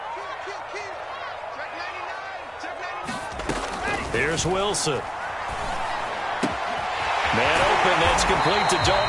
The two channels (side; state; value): both; identical; correlation 1.00